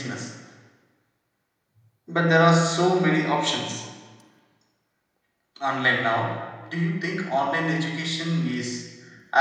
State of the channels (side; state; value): both; identical; correlation 1.00